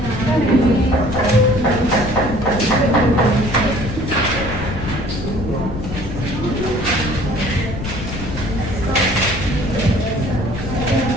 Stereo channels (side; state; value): left; noise; rumble, 7 dB below the sound